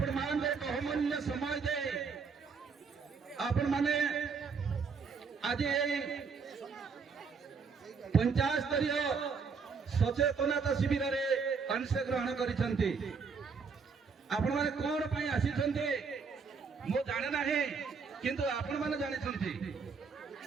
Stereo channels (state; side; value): quieter; left; 5.3 dB